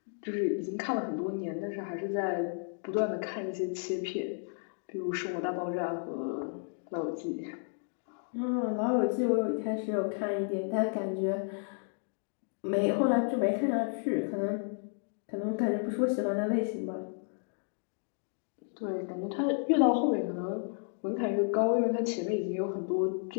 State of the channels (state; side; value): silent; right; 56 dB below the other